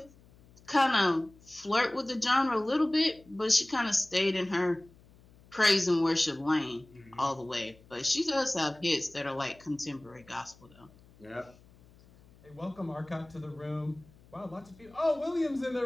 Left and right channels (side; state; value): left; noise; hum, 26 dB below the sound